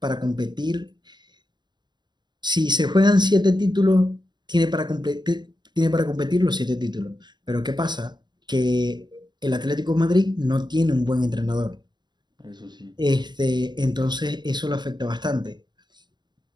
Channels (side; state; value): left; late; 0.21 ms